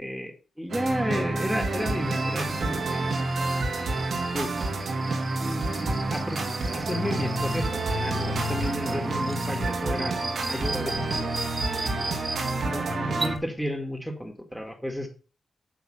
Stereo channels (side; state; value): both; normal; correlation 0.89